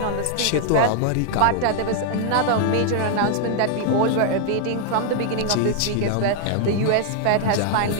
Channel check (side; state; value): both; different; correlation 0.00